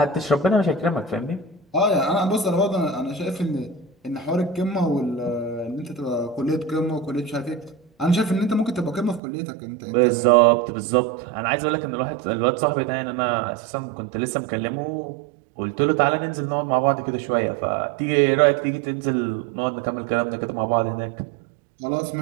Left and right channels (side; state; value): left; drops out; at 9.2 s